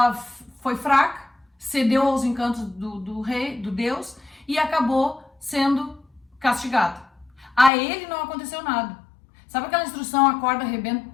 foi fraca, cedeu aos encantos do rei, do deus, e acabou sendo castigada. A ele não aconteceu nada. Sabe aquela instrução, a corda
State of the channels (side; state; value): right; drops out; at 7.7 s